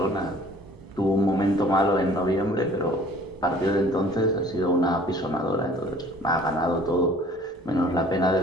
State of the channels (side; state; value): both; normal; correlation 0.52